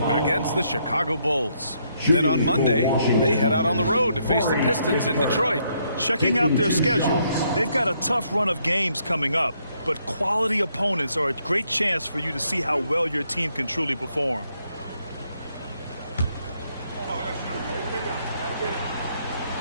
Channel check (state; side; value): inverted; both; correlation -0.73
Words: against the Chicago Bulls. Then on Monday, they head out on the road to face the Pistons in Detroit. Checking out their schedule, they've got a tough run of games coming up, but quality opponents are a great chance for you to see how well your team can truly perform.